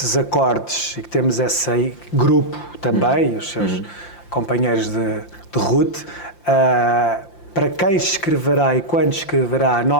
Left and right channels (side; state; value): right; late; 5.8 ms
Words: acordes e que temos esse grupo também, os seus companheiros de route, para quem escreverá e quando escreverá a